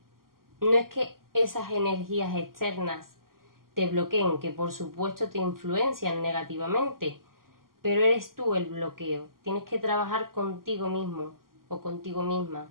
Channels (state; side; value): late; left; 0.92 ms